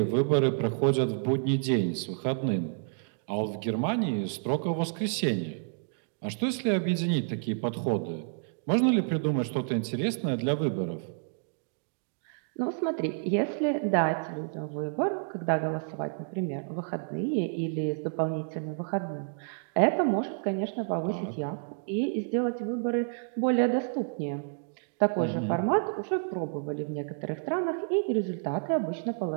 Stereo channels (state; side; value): silent; left; digital silence